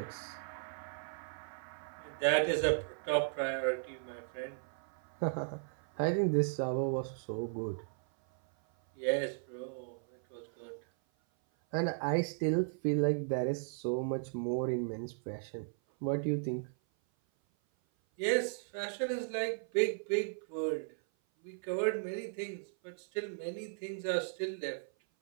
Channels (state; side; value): silent; left; 54 dB below the other